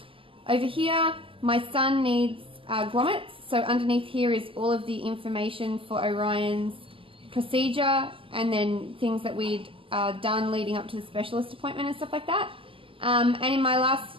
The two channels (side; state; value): left; late; 0.25 ms